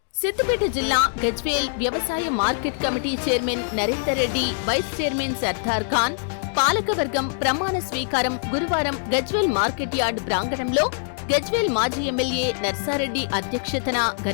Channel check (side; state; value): right; silent; digital silence